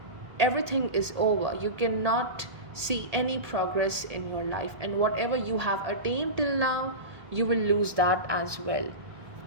everything is over. You cannot see any progress in your life, and whatever you have attained till now, you will lose that as well.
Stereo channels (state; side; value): late; left; 1.8 ms